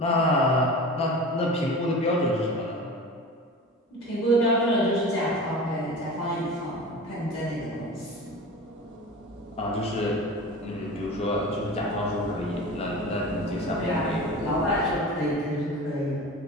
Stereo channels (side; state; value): both; normal; correlation 0.34